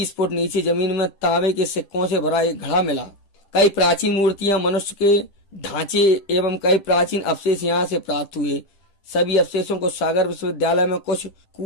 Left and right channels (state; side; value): late; right; 10 ms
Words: फुट नीचे जमीन में तांबे के सिक्कों से भरा एक घड़ा मिला। कई प्राचीन मूर्तियां, मनुष्य के ढांचे एवं कई प्राचीन अवशेष यहाँ से प्राप्त हुए। सभी अवशेषों को सागर विश्वविद्यालय में, कुछ